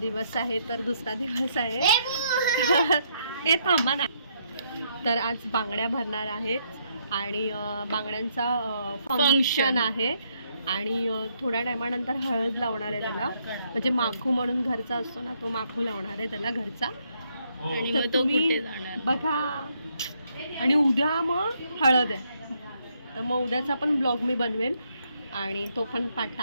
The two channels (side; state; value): both; inverted; correlation -0.74